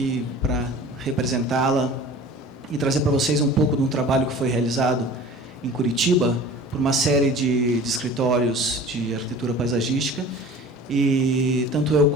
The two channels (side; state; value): both; normal; correlation 0.42